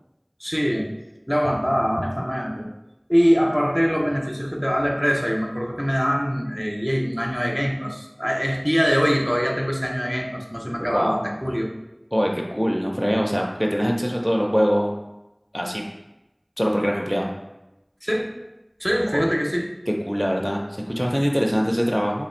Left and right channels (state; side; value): identical; both; correlation 1.00